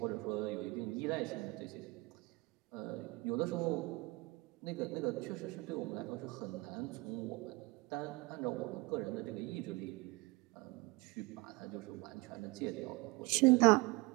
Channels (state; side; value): quieter; left; 23.8 dB